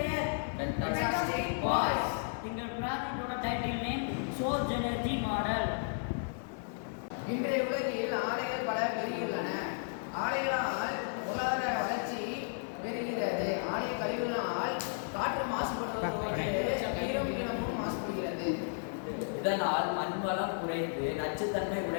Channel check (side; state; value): right; silent; 55 dB below the other